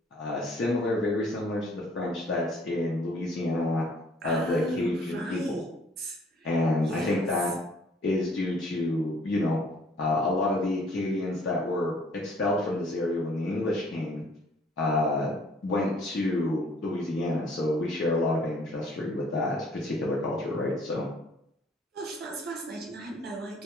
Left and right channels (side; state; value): both; normal; correlation 0.59